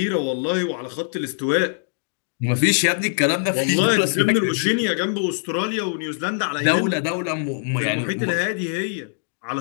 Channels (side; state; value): right; silent; digital silence